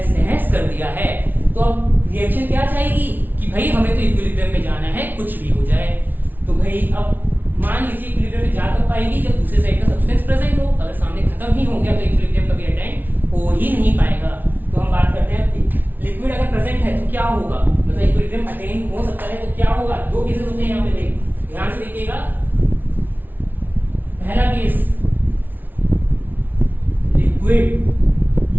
नहस कर दिया है। तो अब रिएक्शन क्या चाहेगी कि भाई हमें तो इक्विलिब्रियम में जाना है, कुछ भी हो जाए। तो भाई अब मान लीजिए इक्विलिब्रियम में जा कब पाएगी, जब दूसरे साइड का सब्सटेंस प्रेजेंट हो। अगर सामने खत्म ही हो गया तो इक्विलिब्रियम कभी अटेंड हो ही नहीं पाएगा। तो हम बात करते हैं लिक्विड अगर प्रेजेंट है तो क्या होगा, मतलब इक्विलिब्रियम अटेन हो सकता है तो क्या होगा। दो केसेस होते हैं यहाँ पे, ध्यान से देखिएगा। पहला केस, लिक्विड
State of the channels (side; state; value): left; late; 0.087 ms